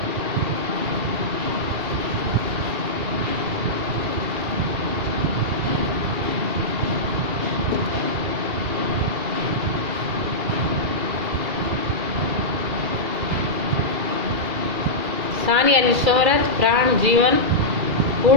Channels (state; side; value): late; left; 2.3 ms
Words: शान यानी शोहरत। प्राण जीवन।